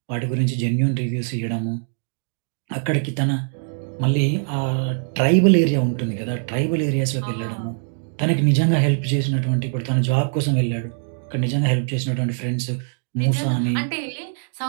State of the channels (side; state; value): left; silent; digital silence